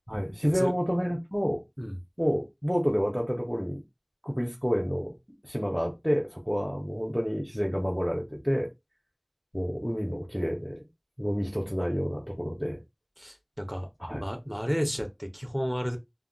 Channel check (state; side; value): identical; both; correlation 1.00